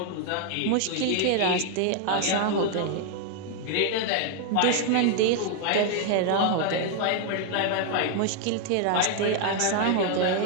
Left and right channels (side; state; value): both; different; correlation 0.00